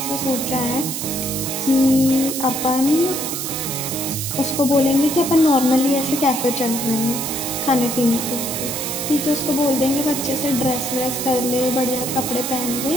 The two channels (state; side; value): noise; right; hiss, 4 dB below the sound